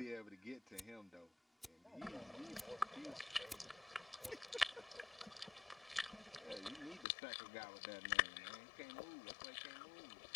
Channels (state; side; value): drops out; right; at 7.1 s